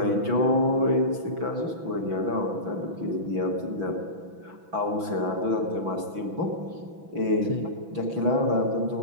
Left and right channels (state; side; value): late; left; 6.0 ms